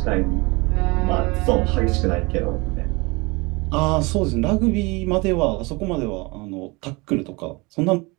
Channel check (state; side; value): quieter; left; 25.9 dB